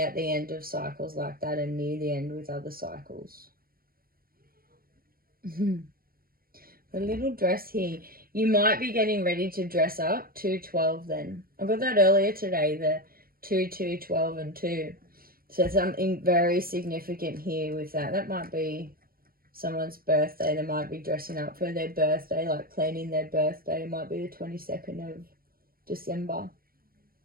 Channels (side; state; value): left; late; 0.43 ms